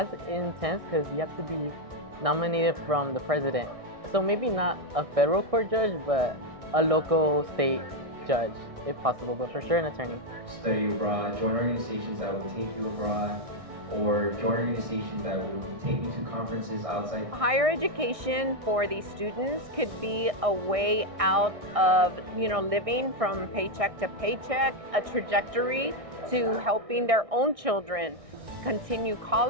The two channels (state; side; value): late; left; 1.6 ms